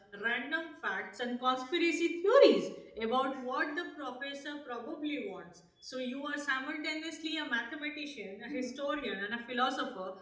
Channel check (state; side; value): identical; both; correlation 1.00